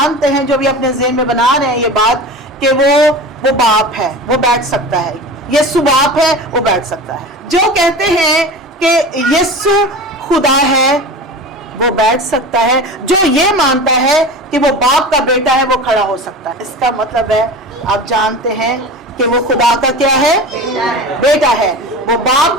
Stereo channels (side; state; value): both; normal; correlation 0.32